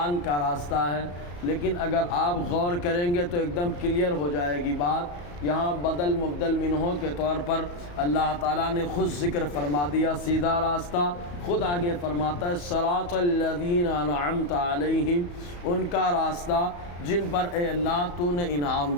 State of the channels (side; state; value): right; late; 34 ms